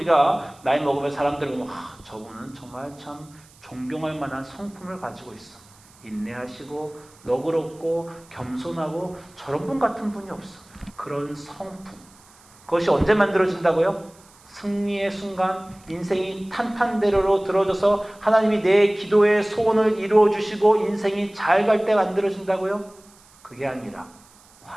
나이 먹으면 사람들 보면 저분은 정말 참 존경할 만한 성품을 가지고 있어. 인내하시고 너그럽고 겸손하고 저런 분 같은 분이 없어. 그런 성품. 그것이 언제 만들어진다고요? 승리의 순간, 인생이 탄탄대로로 들어져서 하나님이 내 기도의 소원을 이루어 주시고 인생이 잘 갈 때 만들어진다고요? 그게 아니라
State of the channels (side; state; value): right; noise; hiss, 27 dB below the sound